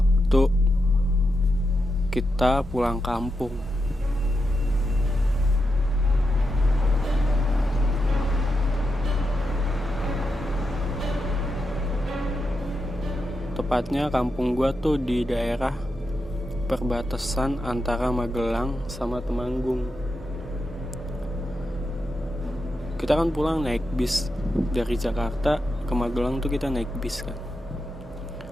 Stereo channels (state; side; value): normal; both; correlation 0.86